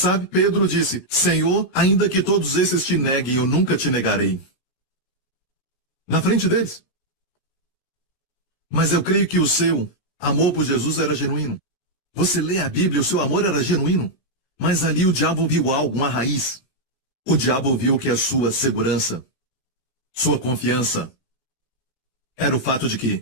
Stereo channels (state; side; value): late; right; 15 ms